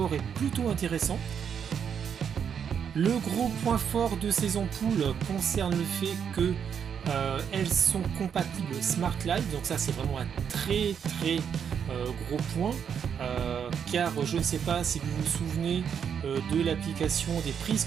est plutôt intéressant. Le gros point fort de ces ampoules concerne le fait que elles sont compatibles Smart Light, donc ça c'est vraiment un très gros point, car je ne sais pas si vous vous souvenez de l'application des prises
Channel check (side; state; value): left; quieter; 7.6 dB